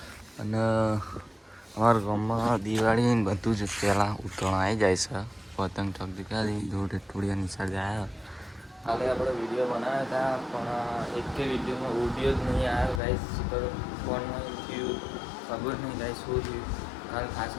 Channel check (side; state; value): right; drops out; at 13.0 s